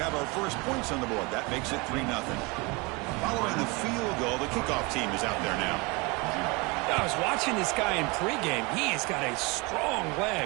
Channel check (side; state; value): left; quieter; 26.6 dB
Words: our first points on the board. That makes it 3-0. Following the field goal, the kickoff team is out there now. I was watching this guy in pregame. He has got a strong